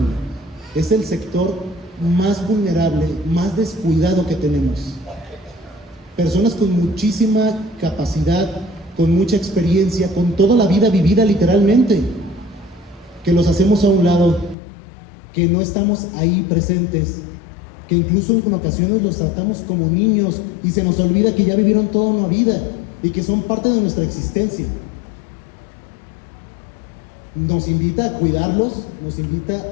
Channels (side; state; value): right; drops out; at 14.6 s